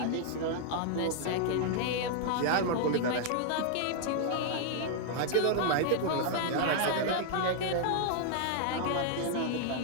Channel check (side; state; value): both; different; correlation -0.01